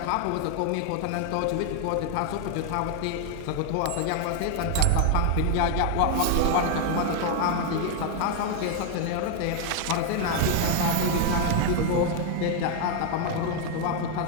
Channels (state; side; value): different; both; correlation 0.00